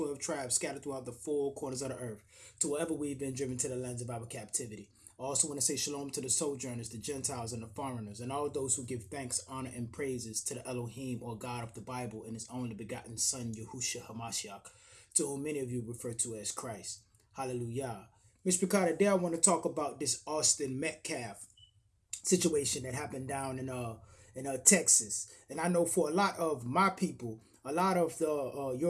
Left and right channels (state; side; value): identical; both; correlation 1.00